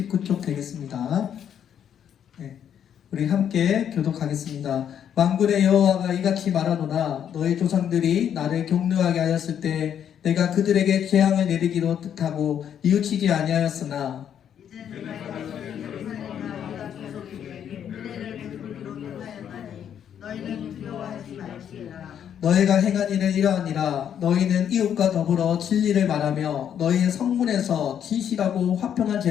되겠습니다. 네, 우리 함께 교독하겠습니다. 만군의 여호와가 이같이 말하노라. 너희 조상들이 나를 경노하게 하였을 때 내가 그들에게 재앙을 내리기로 뜻하고 뉘우치지 아니하였으나 너희는 두려워하지 말지어다. 너희가 행한 일은 이러하니라. 너희는 이웃과 더불어 진리를 말하며 너희의 성문에서 진실하고 화평한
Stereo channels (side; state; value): right; quieter; 9.1 dB